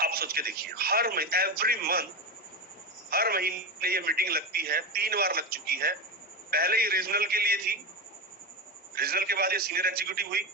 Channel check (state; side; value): normal; both; correlation 0.17